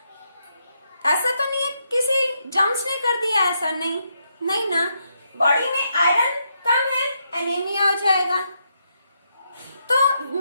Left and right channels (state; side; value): inverted; both; correlation -0.79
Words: है किसी जर्म्स ने कर दिया ऐसा, नहीं ना। बॉडी में आयरन कम है, एनीमिया हो जाएगा। तो